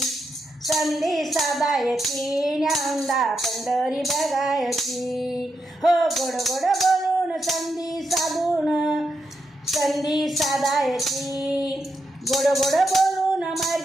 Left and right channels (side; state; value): both; normal; correlation 0.84